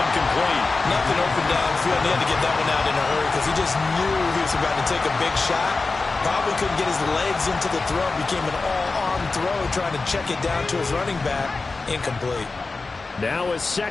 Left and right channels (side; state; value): right; quieter; 3.8 dB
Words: Nothing open downfield. He had to get that one out in a hurry because he just knew he was about to take a big shot. Probably couldn't get his legs into the throw. Became an all-arm throw, trying to check it down to his running back. Incomplete. Now a